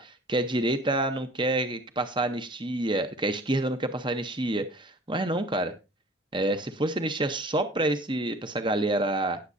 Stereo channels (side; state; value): both; normal; correlation 0.47